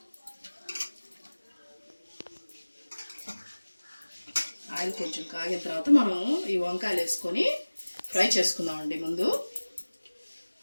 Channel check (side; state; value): both; inverted; correlation -1.00